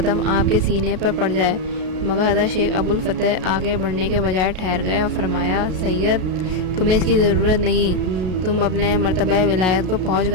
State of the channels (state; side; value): late; left; 33 ms